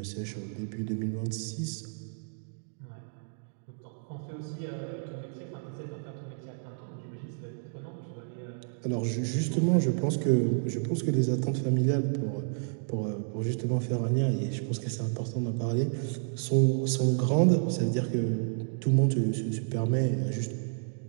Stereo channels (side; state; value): left; silent; digital silence